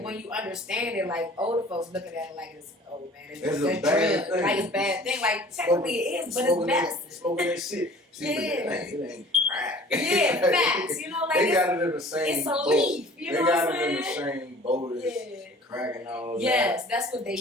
when you understand it, older folks looking at it like it's it's a bad thing. It's a bad thing. Technically it is, but it's medicine. Smoking that shit. It ain't crack. Yeah, facts. they got it in the same it's a boat. leaf. They got it in the same boat as crack and all that. Yes, that's what they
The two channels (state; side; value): normal; both; correlation 0.48